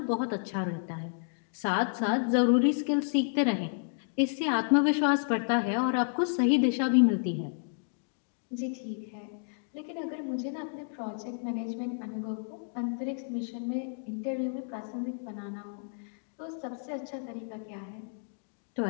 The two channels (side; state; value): right; silent; digital silence